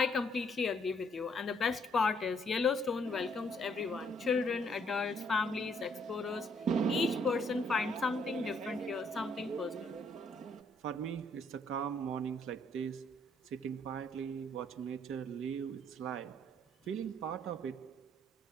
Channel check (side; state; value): both; normal; correlation 0.68